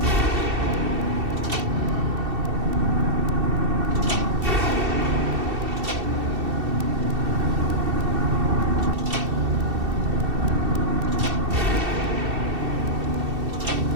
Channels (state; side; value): late; left; 2.7 ms